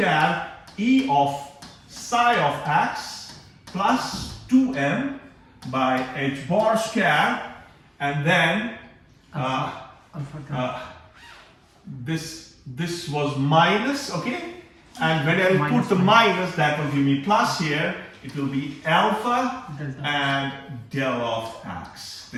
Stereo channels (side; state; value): both; identical; correlation 1.00